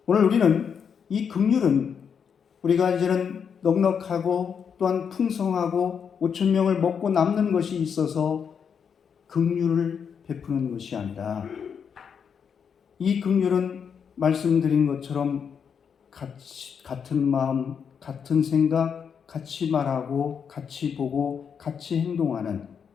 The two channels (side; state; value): right; quieter; 7.0 dB